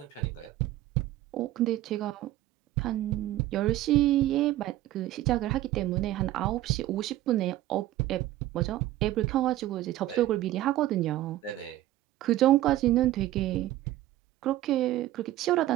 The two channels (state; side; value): quieter; left; 14.8 dB